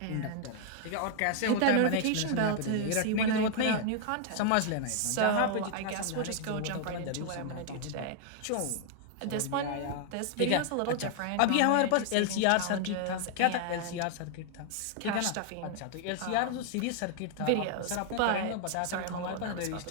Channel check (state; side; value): different; both; correlation 0.00